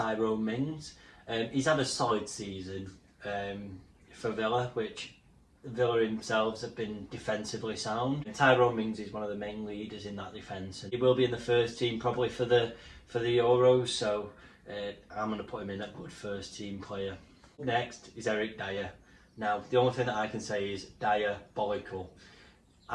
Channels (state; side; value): identical; both; correlation 1.00